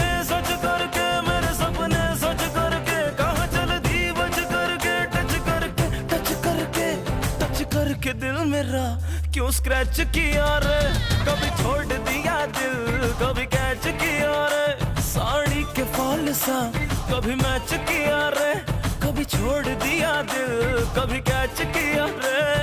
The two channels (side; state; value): both; identical; correlation 1.00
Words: सच करके, मेरे सपने सच करके, कहाँ चल दी बच करके, टच करके टच करके टच करके दिल मेरा क्यों स्क्रैच किया रे। कभी छोड़ दिया दिल, कभी कैच किया रे। साड़ी के फॉल सा कभी मैच किया रे, कभी छोड़ दिया दिल, कभी कैच किया